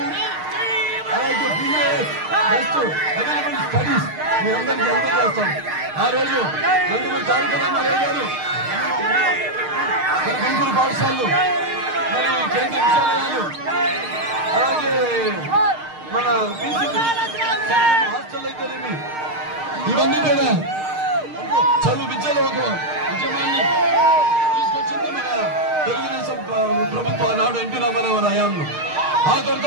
అలాగే బిఏఎస్ బెస్ట్ అవైలబుల్ స్టడీస్ మీ అందరికీ అందజేస్తాం. ఆ రోజు నందమూరి తారక రామారావు గారు మన గుంటూరు పాఠశాలలు మరి కేంద్ర విద్యాలయాలు అలాగే మన హాస్టల్ అయితేనేమి ఇవన్నీ కూడా చదువు విద్యలో ఒక ఉద్యమాన్ని తీసుకొచ్చింది మన తెలుగుదేశం ప్రభుత్వం నాడు ఎన్టీ రామారావు హయాంలో. ఆ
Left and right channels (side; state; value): left; late; 6.5 ms